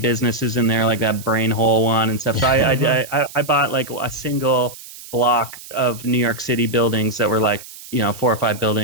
in there, like that brain hole one and stuff. So I bought like a single block of New York City buildings that were like 4 or 5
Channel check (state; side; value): noise; right; hiss, 16 dB below the sound